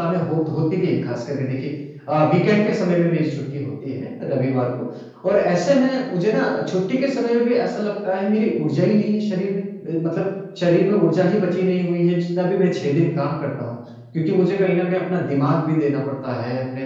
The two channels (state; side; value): identical; both; correlation 1.00